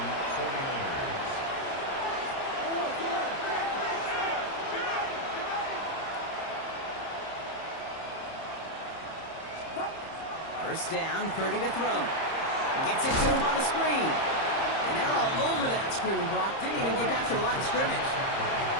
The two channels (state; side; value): late; right; 30 ms